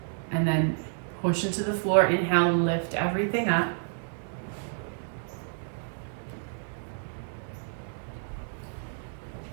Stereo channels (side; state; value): left; silent; 58 dB below the other